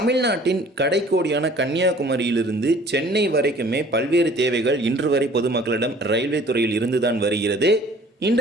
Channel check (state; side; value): normal; both; correlation 0.52